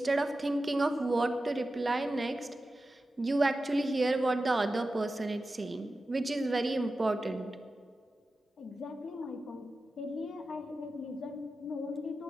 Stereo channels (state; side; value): normal; both; correlation 0.93